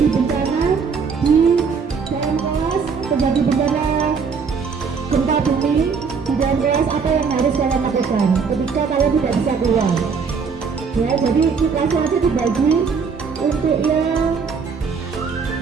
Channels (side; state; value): left; quieter; 5.6 dB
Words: bencana di dalam kelas, terjadi bencana gempa bumi di dalam kelas, apa yang harus kalian lakukan ketika kalian tidak bisa keluar, ya. Jadi kelasnya aja dibagi untuk yang